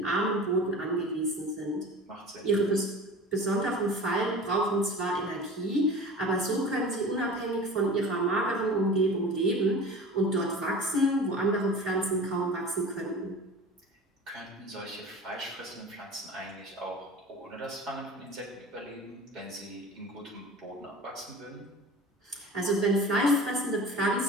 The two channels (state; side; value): normal; both; correlation 0.38